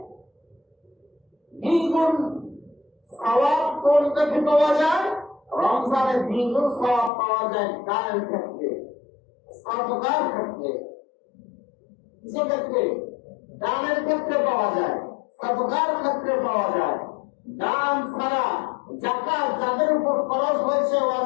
দ্বিগুণ সওয়াব কোনটা পাওয়া যায়? রমজানে দ্বিগুণ সওয়াব পাওয়া যায় দানের ক্ষেত্রে, সাদকার ক্ষেত্রে। কিসের ক্ষেত্রে? দানের ক্ষেত্রে পাওয়া যায়, সাদকার ক্ষেত্রে পাওয়া যায়। দান ছাড়া যাকাত যাদের উপর খরচ হয়েছে,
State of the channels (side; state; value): right; drops out; at 7.1 s